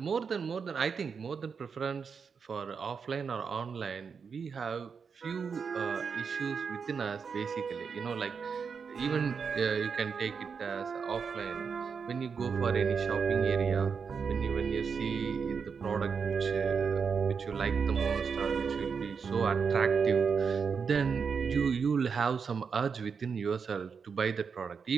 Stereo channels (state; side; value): quieter; left; 5.9 dB